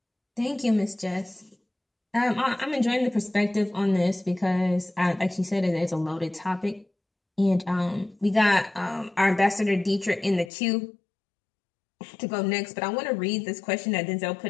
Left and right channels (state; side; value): drops out; right; at 10.5 s